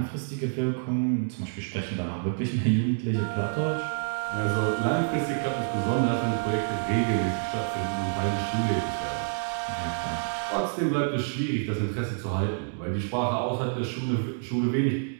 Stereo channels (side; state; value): left; silent; digital silence